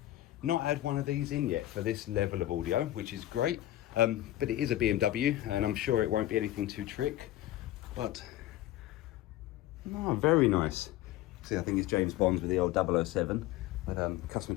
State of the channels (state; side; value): quieter; right; 14.5 dB